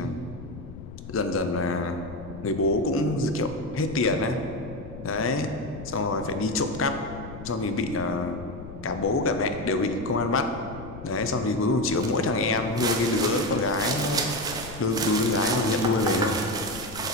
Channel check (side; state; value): left; noise; rumble, 13 dB below the sound